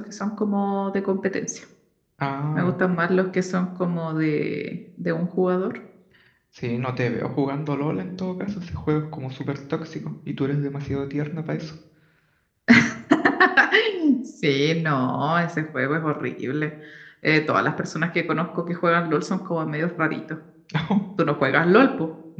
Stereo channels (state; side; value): identical; both; correlation 1.00